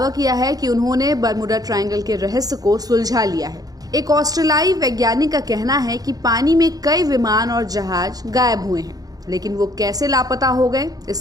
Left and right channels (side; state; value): left; late; 0.18 ms